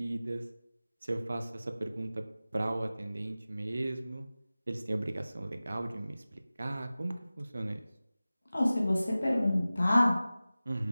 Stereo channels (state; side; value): inverted; both; correlation -0.97